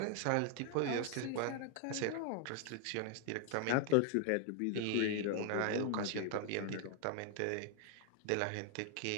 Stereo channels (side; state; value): both; different; correlation 0.00